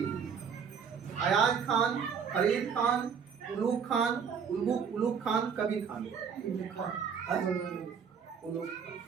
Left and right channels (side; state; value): left; quieter; 6.8 dB